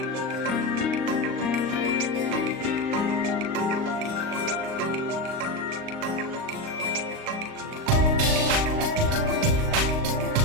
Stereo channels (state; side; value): late; left; 39 ms